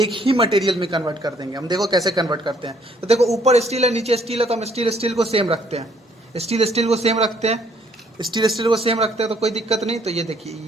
ही मटेरियल में कन्वर्ट कर देंगे। हम देखो कैसे कन्वर्ट करते हैं। तो देखो ऊपर स्टील है, नीचे स्टील है, तो हम स्टील स्टील को सेम रखते हैं। स्टील स्टील को सेम रखते हैं, स्टील स्टील को सेम रखते हैं तो कोई दिक्कत नहीं। तो ये देखिए,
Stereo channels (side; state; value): both; normal; correlation 0.65